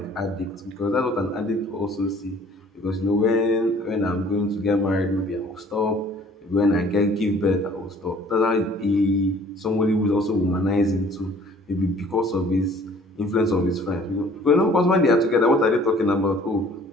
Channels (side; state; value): both; normal; correlation 0.54